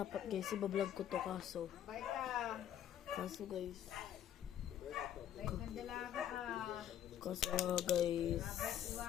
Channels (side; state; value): right; quieter; 10.4 dB